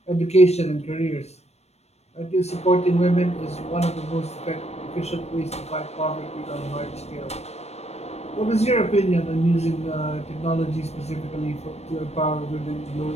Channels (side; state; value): right; late; 0.31 ms